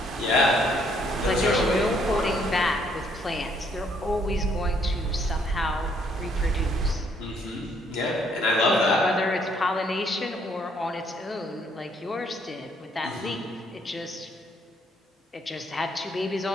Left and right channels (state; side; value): normal; both; correlation 0.67